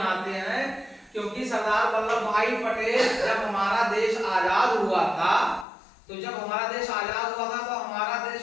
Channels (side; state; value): right; drops out; at 5.7 s